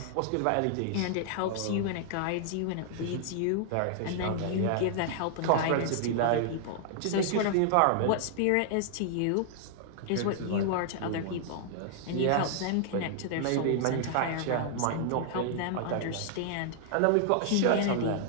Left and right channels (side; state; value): both; different; correlation -0.01